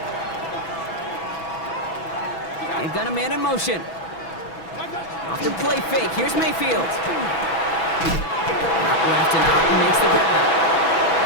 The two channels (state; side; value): late; right; 6.1 ms